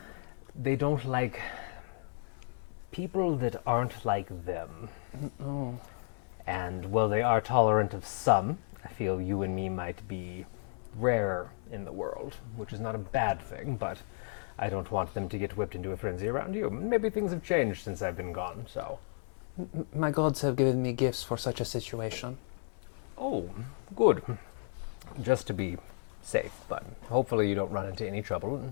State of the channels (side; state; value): right; silent; 56 dB below the other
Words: They don't like people that aren't like them. Oh. And while they are tolerant of some, I feel you and me might be rare in the world, which is not a bad thing, but I don't want them to get whipped into a frenzy around you. Maybe things have changed since I've been gone, so. My gods have given me gifts for such a situation. Oh, good. Just to be safe, but hopefully you don't run into any trouble. And